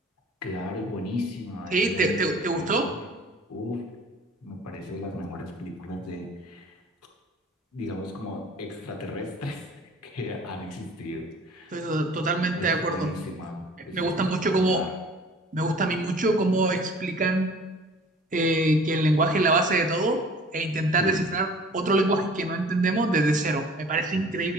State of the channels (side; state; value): both; normal; correlation 0.48